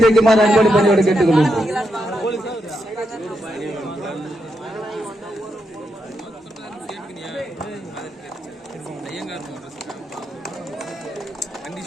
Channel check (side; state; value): both; normal; correlation 0.82